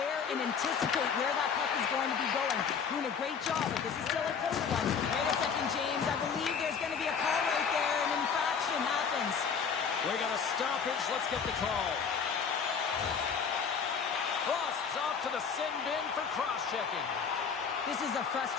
and anticipate where that puck is going to be going. Doing a great job, but this is still a close one. Wait a second, James. I believe there's going to be a call right there. An infraction happens. We got a stoppage. Let's get the call. Frost's off to the sin bin for cross-checking. This is a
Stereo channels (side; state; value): right; quieter; 6.4 dB